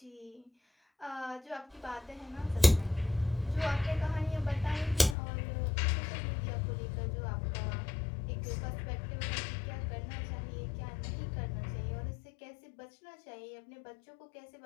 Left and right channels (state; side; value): drops out; right; at 5.2 s